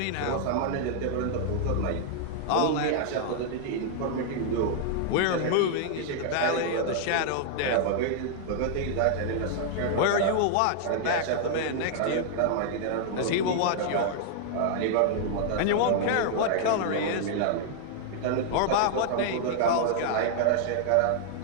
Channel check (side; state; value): both; different; correlation -0.01